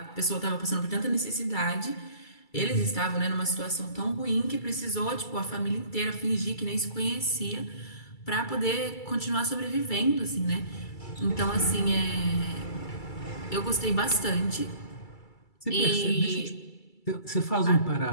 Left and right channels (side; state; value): right; late; 2.3 ms